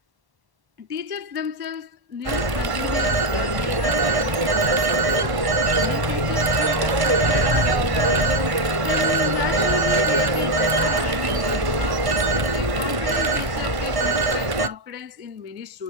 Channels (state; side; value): late; left; 1.1 ms